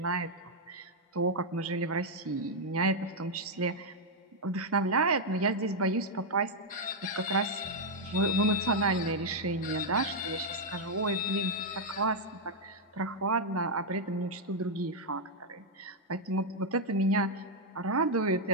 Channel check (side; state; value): both; normal; correlation -0.02